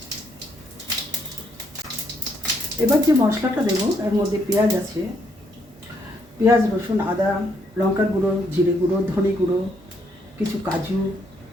এবার যে মশলাটা দেবো এর মধ্যে পেঁয়াজ আছে, পেঁয়াজ, রসুন, আদা, লঙ্কার গুঁড়ো, জিরে গুঁড়ো, ধনে গুঁড়ো, কিছু কাজু,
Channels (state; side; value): normal; both; correlation 0.72